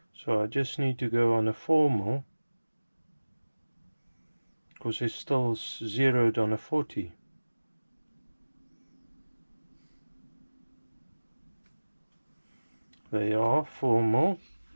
so I just need to go on a 4mm, because it's still zeroed on a 40. They are 4mm.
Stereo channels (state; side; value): inverted; both; correlation -1.00